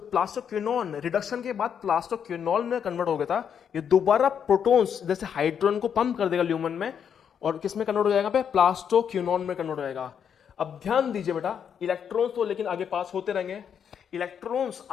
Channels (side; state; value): right; quieter; 7.9 dB